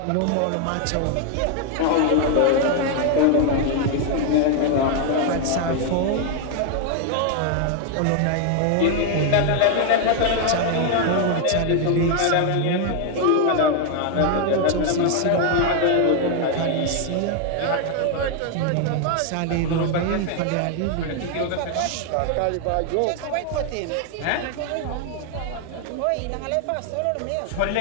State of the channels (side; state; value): both; different; correlation 0.00